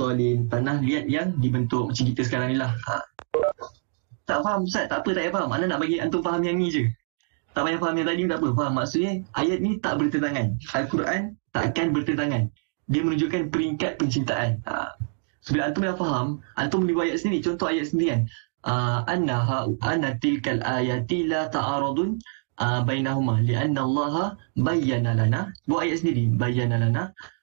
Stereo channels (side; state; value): left; silent; digital silence